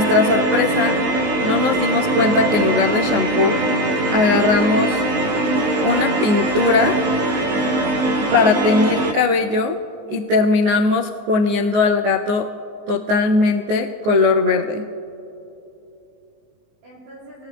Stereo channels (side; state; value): left; late; 19 ms